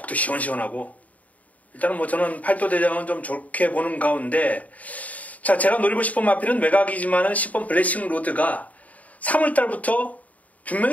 시원시원하고 일단은 뭐 저는 8도 대장은 좀 좋게 보는 가운데 자, 제가 노리고 싶은 마필은 외곽이지만은 10번 블레싱 로드가 3월달부터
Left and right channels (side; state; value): right; late; 0.071 ms